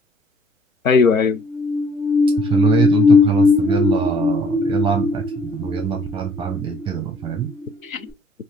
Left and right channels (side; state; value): both; normal; correlation 0.61